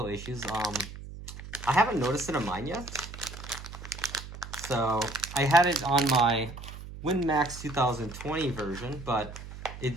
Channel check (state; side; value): noise; right; hum, 12 dB below the sound